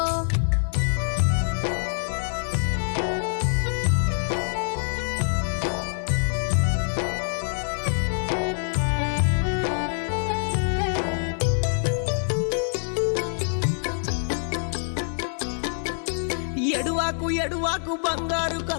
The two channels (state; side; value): silent; right; 60 dB below the other